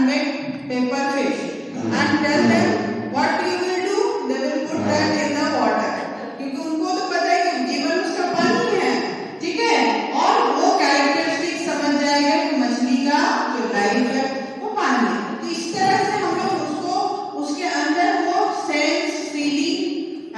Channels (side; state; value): both; identical; correlation 1.00